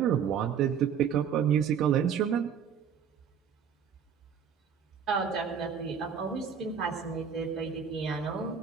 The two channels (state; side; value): quieter; left; 7.5 dB